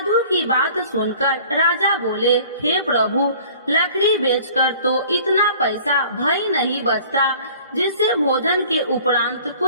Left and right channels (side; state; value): both; inverted; correlation -0.49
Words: की बात सुनकर राजा बोले, हे प्रभु, लकड़ी बेचकर तो इतना पैसा भई नहीं बचता जिससे भोजन के उपरांत